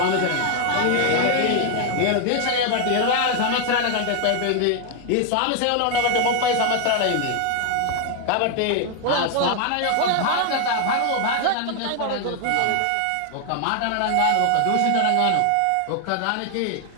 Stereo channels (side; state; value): both; different; correlation 0.00